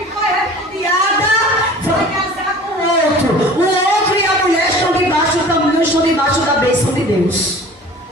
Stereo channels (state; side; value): normal; both; correlation 0.43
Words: foi repudiada vai casar com outro. O outro e a mulher estão debaixo da bênção de Deus.